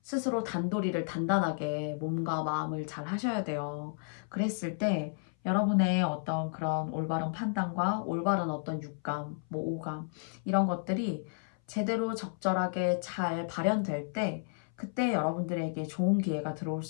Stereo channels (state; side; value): silent; right; 56 dB below the other